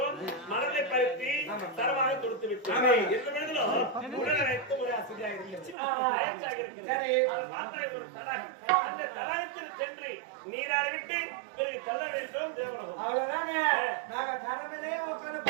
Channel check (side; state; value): left; drops out; at 5.8 s